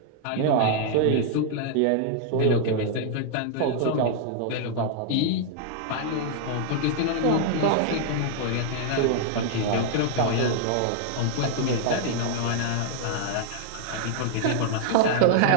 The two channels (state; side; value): different; both; correlation 0.00